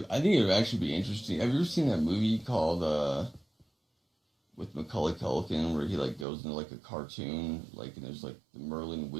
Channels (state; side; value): drops out; left; at 6.2 s